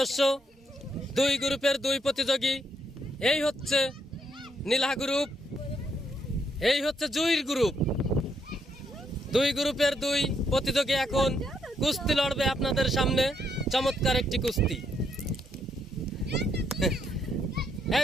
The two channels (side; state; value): both; normal; correlation 0.74